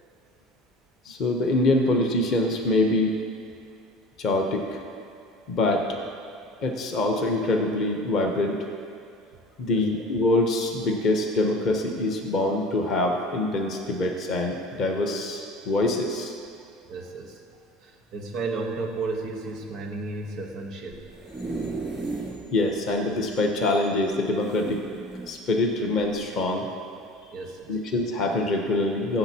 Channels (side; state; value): both; normal; correlation 0.41